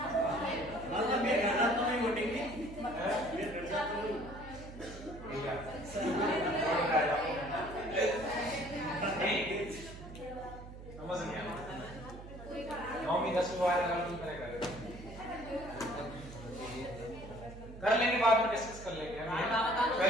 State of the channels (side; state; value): right; noise; hum, 14 dB below the sound